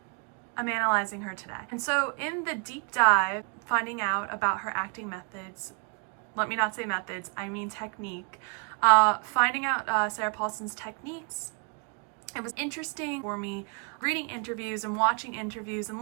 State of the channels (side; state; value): left; quieter; 36.3 dB